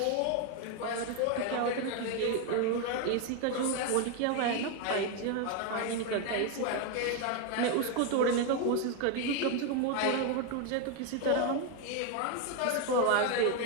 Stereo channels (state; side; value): different; both; correlation 0.01